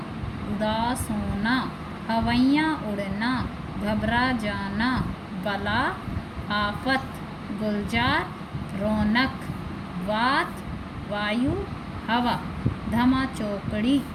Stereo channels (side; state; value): both; identical; correlation 1.00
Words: उदास होना, हवैयाँ उड़ना घबरा जाना, बला आफत, गुलजार रौनक, वात वायु हवा, धमा चौकड़ी